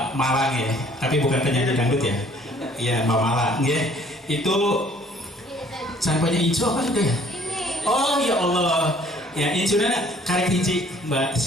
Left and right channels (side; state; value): both; normal; correlation 0.57